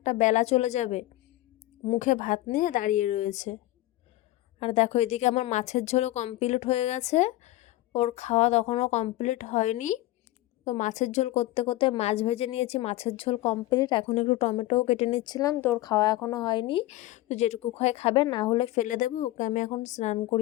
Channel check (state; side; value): quieter; right; 16.8 dB